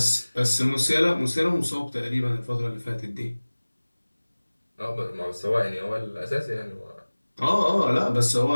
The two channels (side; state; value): both; inverted; correlation -1.00